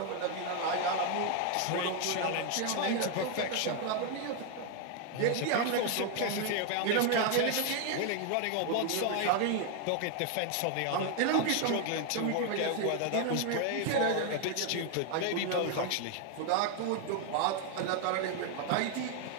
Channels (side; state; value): both; different; correlation 0.01